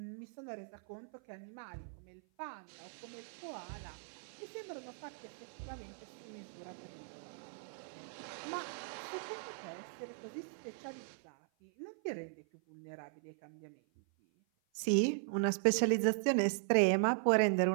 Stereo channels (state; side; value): silent; left; 52 dB below the other